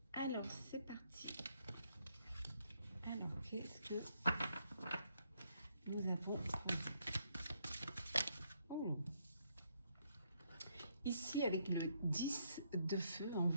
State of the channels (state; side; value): inverted; both; correlation -0.73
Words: Alors, c'est parti. Alors, qu'est-ce que nous avons pour vous? Oh. Ici, avec le 10 de feu, on